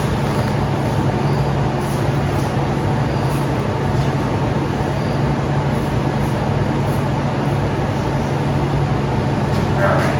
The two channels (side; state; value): both; identical; correlation 1.00